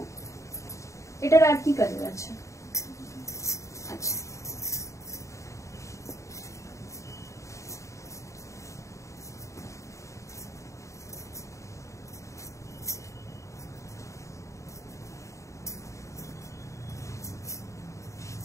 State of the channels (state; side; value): late; right; 0.15 ms